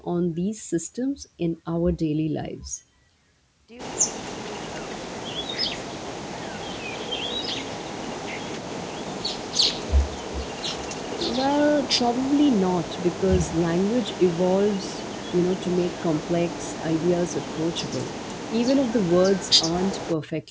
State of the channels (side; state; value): both; identical; correlation 1.00